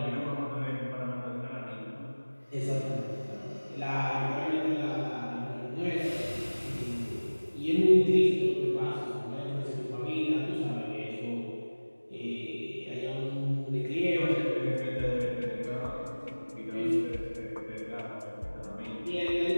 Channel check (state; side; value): inverted; both; correlation -1.00